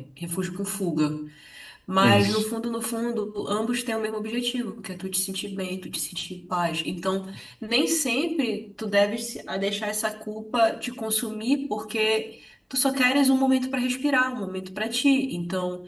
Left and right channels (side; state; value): both; identical; correlation 1.00